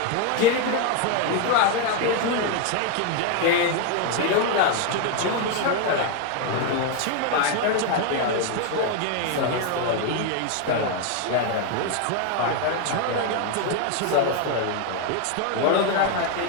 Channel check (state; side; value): different; both; correlation 0.01